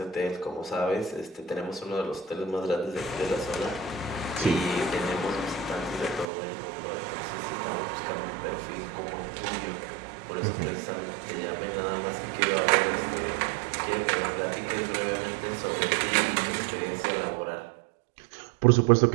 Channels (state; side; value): drops out; left; at 6.2 s